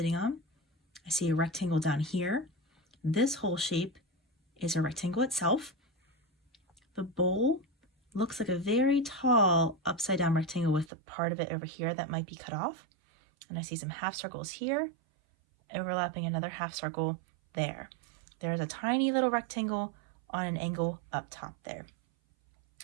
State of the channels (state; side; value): drops out; left; at 10.9 s